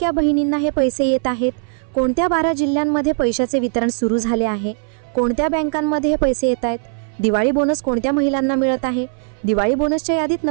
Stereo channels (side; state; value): left; silent; 59 dB below the other